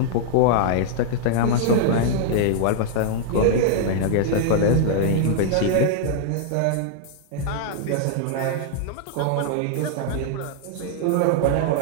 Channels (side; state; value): both; different; correlation -0.01